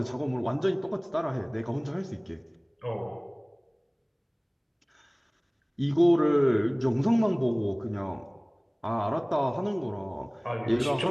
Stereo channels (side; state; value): both; identical; correlation 1.00